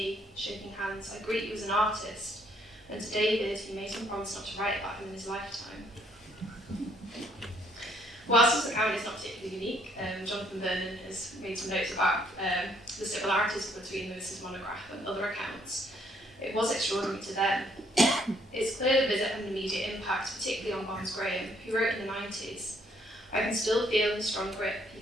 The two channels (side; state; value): both; normal; correlation 0.67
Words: shaking hands, 'I greet you as an artist,' and to David he made him promise not to write about him in his lifetime. Whilst this account is not particularly unique, Jonathan Vernon has made some notes about the similarities between Lewis's monograph and other accounts. It was extraordinary to them. It's clear the visit had an immediate impact, particularly on Barnes Graham, who wrote in the 90s, "I can still feel the strong grip